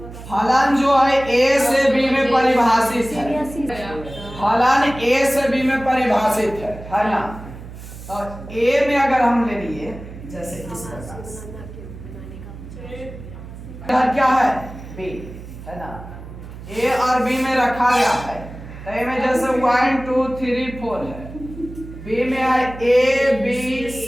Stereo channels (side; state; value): right; noise; hum, 14 dB below the sound